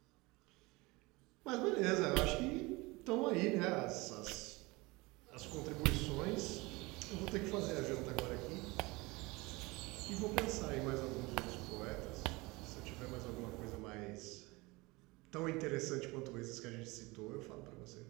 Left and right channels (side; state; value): left; quieter; 23.6 dB